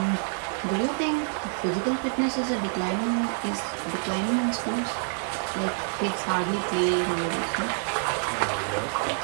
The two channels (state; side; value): silent; left; 60 dB below the other